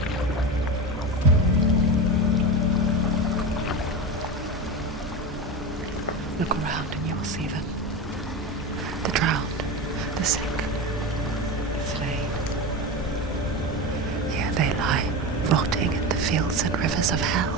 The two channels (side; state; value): both; normal; correlation 0.22